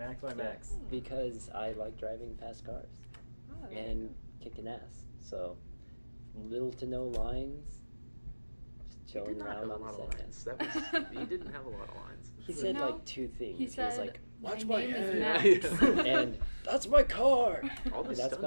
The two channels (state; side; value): inverted; both; correlation -1.00